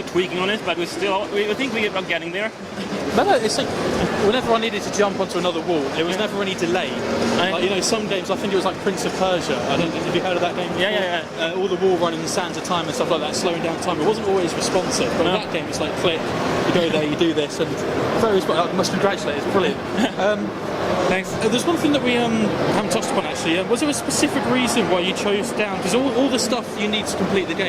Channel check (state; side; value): identical; both; correlation 1.00